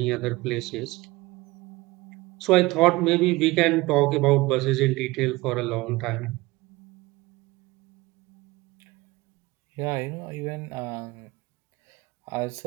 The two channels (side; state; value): left; quieter; 21.2 dB